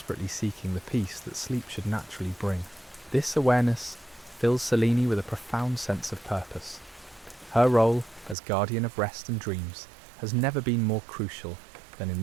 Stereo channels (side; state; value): left; drops out; at 8.3 s